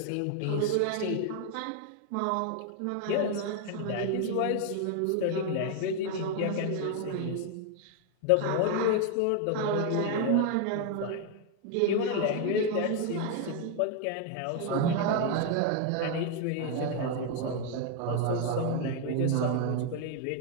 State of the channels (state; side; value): different; both; correlation 0.01